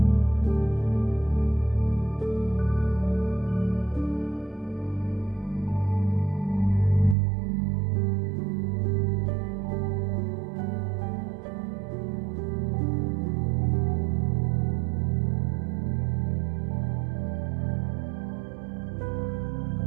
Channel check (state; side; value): drops out; left; at 7.2 s